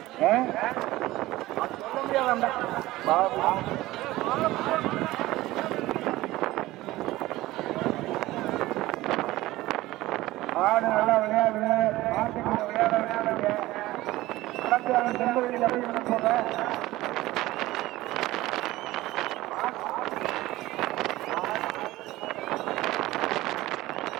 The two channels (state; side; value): quieter; left; 17.6 dB